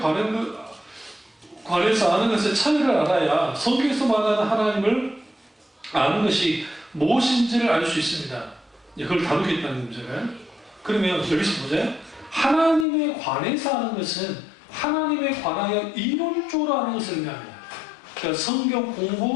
관해서 아는 것의 차이를 알아야 성경에서 말하는 하나님을 아는 것이 무엇인지를 알 수 있습니다. 그걸 다루겠다는 문제가요. 그러면 여기서 보세요. 하나님에 관해서 아는 것은 하나님에 관하여 이론적으로 아는 것을 의미합니다. 그러니까 성경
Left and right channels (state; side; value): drops out; right; at 12.9 s